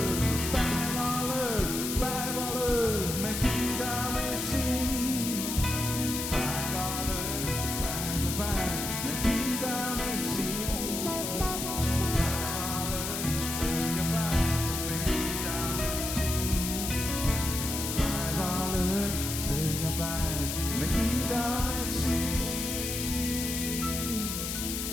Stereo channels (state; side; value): noise; left; hiss, 3 dB below the sound